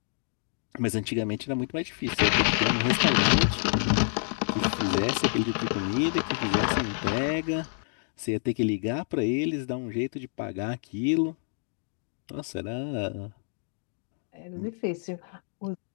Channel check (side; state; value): right; silent; digital silence